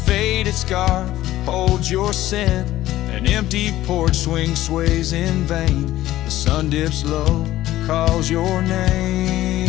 scarf holds your scent, an empty porch swing sways in vain, the sun dips low, calls your name.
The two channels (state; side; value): quieter; right; 14.8 dB